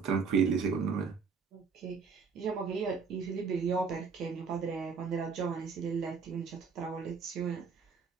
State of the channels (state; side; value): quieter; left; 5.5 dB